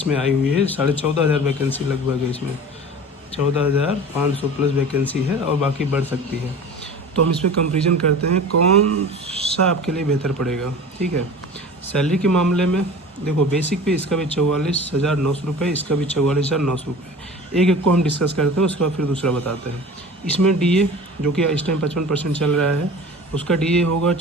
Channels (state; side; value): normal; both; correlation 0.38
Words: में आई हुई है। 14,500 वैकेंसी लगभग है इसमें, 14,500 प्लस वैकेंसी है और बाकी बढ़ सकती है। तो हम इस पर कंपेरिजन करते हैं कौन सा आपके लिए बेहतर पड़ेगा। ठीक है, सैलरी के मामले में देखो, बेसिक पे इसका भी 44,900 रुपये, इसका भी 44,900 रुपये। एक एक को हम डिस्कस करते हैं, उसके बाद फिर दूसरा बताते हैं। इसमें DA जो कि इस टाइम 55% चल रहा है, उसका DA होगा